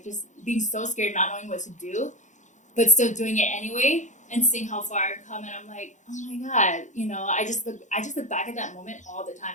just being so scared, not knowing what to do, but still doing it anyway and seeing how far I've come. And I'm like, oh my God, you know, I just look back at that moment all the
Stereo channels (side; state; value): right; late; 0.35 ms